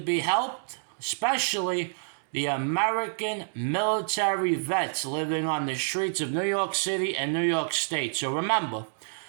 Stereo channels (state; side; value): silent; left; digital silence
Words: helped, especially the American military vets living on the streets of New York City and New York State. So remember,